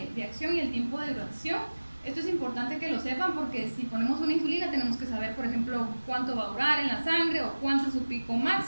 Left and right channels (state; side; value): inverted; both; correlation -1.00